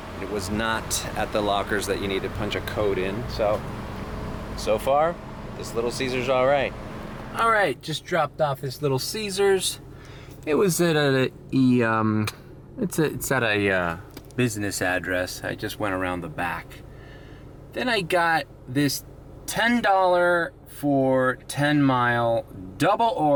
It was not at the lockers that you need to punch a code in. So far, this little Ceasar's all right. All right, just dropped off this little Ceasars. It was at it's at a business address. I just went around the back. Then I got this $10 for 10 Mile, double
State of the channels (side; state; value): both; identical; correlation 1.00